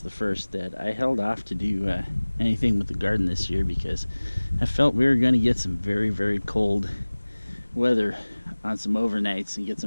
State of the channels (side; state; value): both; inverted; correlation -1.00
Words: the first, that I held off to do anything with the garden this year because I felt we were going to get some very, very cold weather on some overnights and get